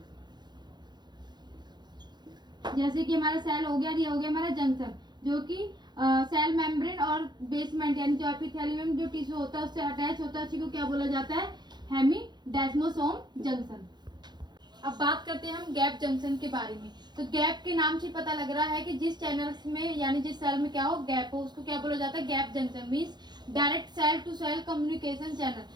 जैसे कि हमारा सेल हो गया, ये हो गया हमारा जंक्शन, जो कि सेल मेम्ब्रेन और बेसमेंट यानी जो एपिथेलियम जो टिश्यू होता है उससे अटैच होता है, उसी को क्या बोला जाता है, हेमीडेस्मोसोम जंक्शन। अब बात करते हैं हम गैप जंक्शन के बारे में। तो गैप के नाम से पता लग रहा है कि जिस चैनल्स में यानी जिस सेल में क्या हो, गैप हो, उसको क्या बोला जाता है, gap junction. Means direct cell to cell communication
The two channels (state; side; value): late; left; 0.21 ms